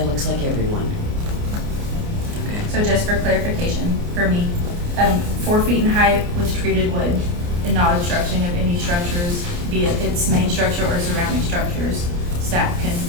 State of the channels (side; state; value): left; late; 29 ms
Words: looks like everyone. Okay. So just for clarification, for me, 4 feet in height with treated wood and not obstruction of any structures, be it its main structure or surrounding structures, staff can